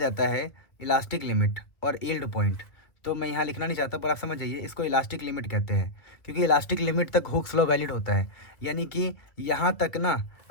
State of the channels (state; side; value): late; right; 1.6 ms